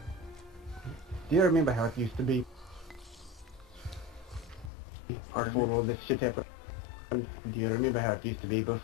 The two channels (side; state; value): right; drops out; at 4.7 s